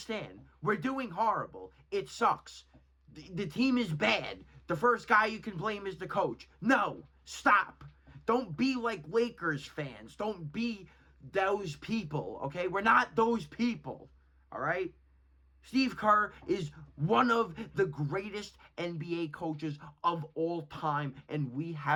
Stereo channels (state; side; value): identical; both; correlation 1.00